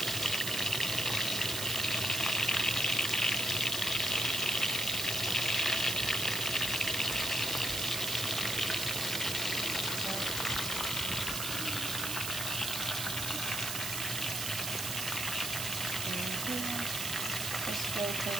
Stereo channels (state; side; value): noise; right; hiss, 2 dB below the sound